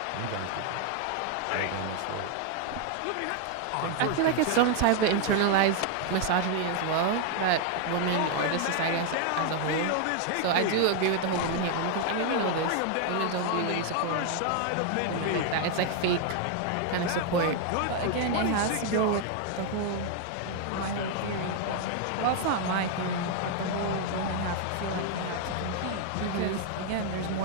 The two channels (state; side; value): different; both; correlation 0.00